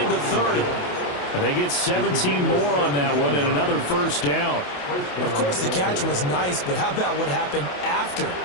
the 30. And they get 17 more on that one and another first down. Of course, the catch was nice, but how about what happened after?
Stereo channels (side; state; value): right; late; 28 ms